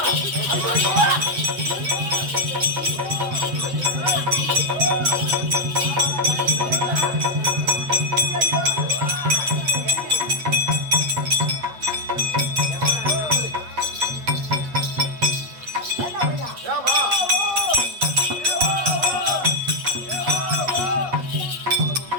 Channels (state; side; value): late; left; 8.4 ms